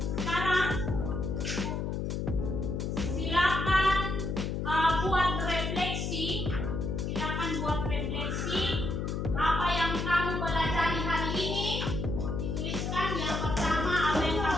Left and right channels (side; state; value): left; noise; hum, 2 dB below the sound